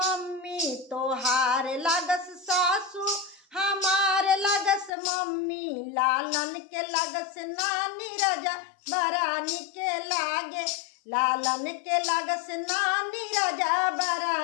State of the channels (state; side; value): drops out; right; at 4.9 s